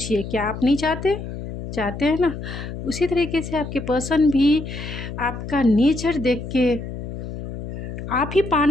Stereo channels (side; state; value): left; noise; hum, 8 dB below the sound